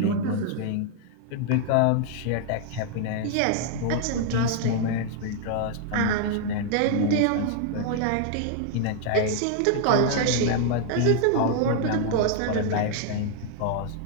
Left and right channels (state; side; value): different; both; correlation 0.00